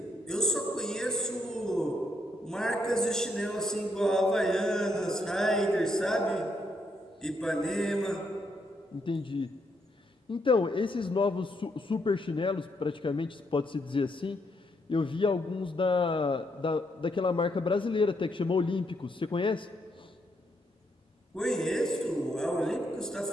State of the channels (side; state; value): both; normal; correlation 0.76